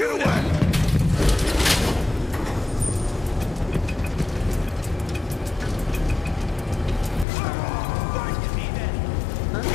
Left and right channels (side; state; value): right; drops out; at 7.2 s